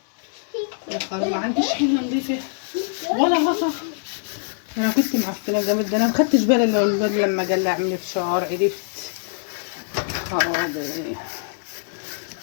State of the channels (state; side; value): silent; right; 63 dB below the other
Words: يا خلاص ما عنديش حله نضيفه ولا غطا. انا كنت معفنه جامد، ده انا ما خدتش بالي الا لما جه يعمل فشار عرفت. خرابي،